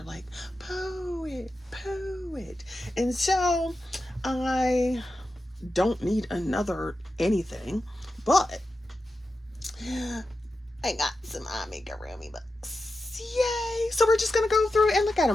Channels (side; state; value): both; normal; correlation 0.91